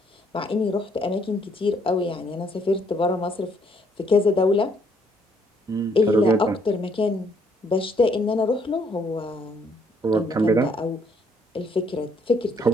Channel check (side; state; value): both; normal; correlation 0.68